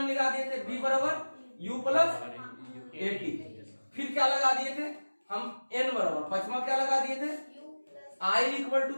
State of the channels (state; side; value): inverted; both; correlation -1.00